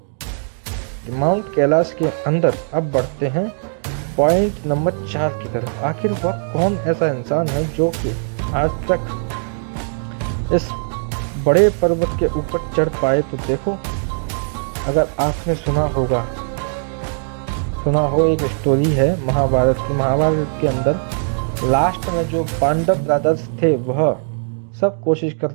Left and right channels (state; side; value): silent; left; digital silence